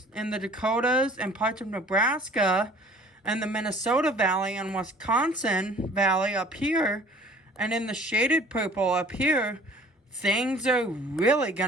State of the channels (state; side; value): normal; both; correlation 0.51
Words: in the Dakotas, and parts of Nebraska, and the Minnesota Valley and Wisconsin Valley up here, and in the shaded purple up here, things are really going